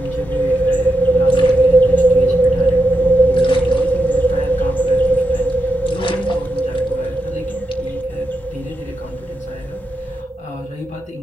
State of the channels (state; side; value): normal; both; correlation 0.86